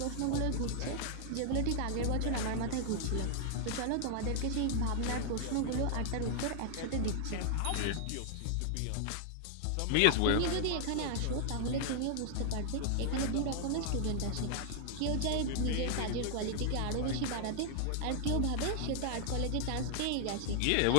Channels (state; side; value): different; both; correlation -0.01